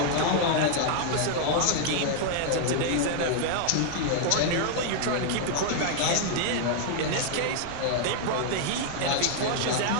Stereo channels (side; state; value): both; different; correlation 0.00